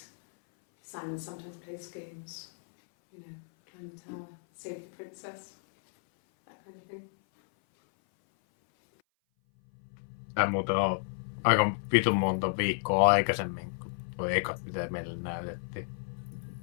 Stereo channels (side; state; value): right; silent; 57 dB below the other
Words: Simon sometimes plays games, you know, climb the tower, save the princess, that kind of thing. Tää muuten on aika vitun monta viikkoa aikaisemmin kuin tuo ekat, mitä meille näytettiin.